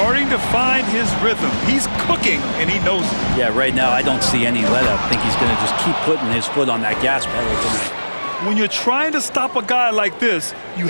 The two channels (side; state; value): both; inverted; correlation -1.00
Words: to find his rhythm. He's cooking, and he knows it. Yeah, right now I don't see any let-up. I think he's going to just keep putting his foot on that gas pedal tonight. When you're trying to stop a guy like this, you